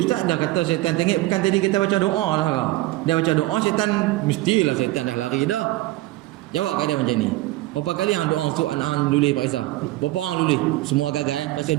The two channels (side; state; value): left; quieter; 17.6 dB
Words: ustaz dah kata syaitan tenggek, bukan tadi kita baca doa lah kau. Dia baca doa syaitan, mestilah syaitan dah lari dah. Jawab keadaan macam ni. Berapa kali hang doa untuk anak-anak lulih Pak Isa? Berapa orang lulih? Semua gagal. Pasal